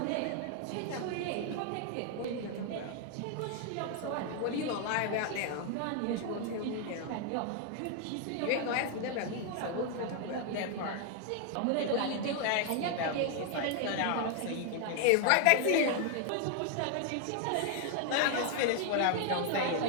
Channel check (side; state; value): both; different; correlation 0.00